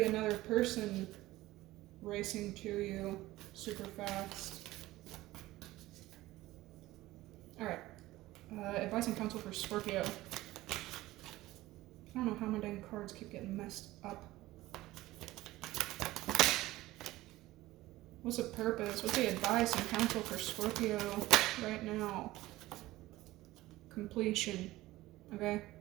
another person racing to you super fast. Alright. Advice and counsel for Scorpio. I don't know how my dang cards keep getting messed up. What's the purpose? What's the advice and counsel for Scorpio right now? Completion. Okay?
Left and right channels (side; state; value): left; quieter; 17.4 dB